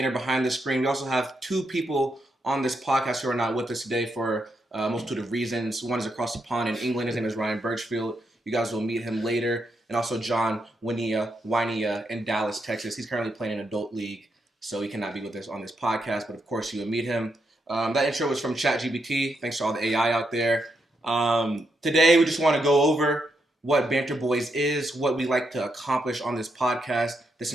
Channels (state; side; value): normal; both; correlation 0.81